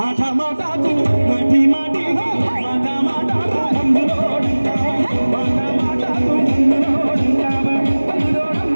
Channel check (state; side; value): inverted; both; correlation -1.00